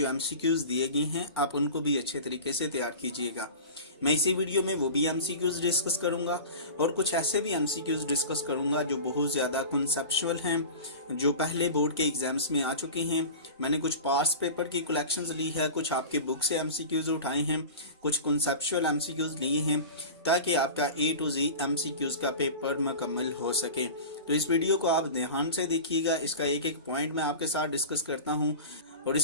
एमसीक्यूज़ दिए गए हैं आप उनको भी अच्छे तरीके से तैयार कीजिएगा। मैं इसी वीडियो में वो भी एमसीक्यूज़ डिस्कस करूंगा और कुछ ऐसे भी एमसीक्यूज़ डिस्कस करूंगा जो बहुत ज़्यादा कॉन्सेप्चुअल हैं, जो पहले बोर्ड के एग्जाम्स में आ चुके हैं। मैंने कुछ पास्ट पेपर की कलेक्शंस ली है, कुछ आपके बुक से एमसीक्यूज़ उठाए हैं, कुछ कॉन्सेप्चुअल एमसीक्यूज़ लिए हैं ताकि आपका ए टू जी एमसीक्यूज़ का पेपर मुकम्मल हो सके। तो इस वीडियो को आप ध्यान से देखिएगा, इसका एक एक पॉइंट मैं आपके साथ डिस्कस करता हूँ। और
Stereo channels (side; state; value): both; inverted; correlation -0.33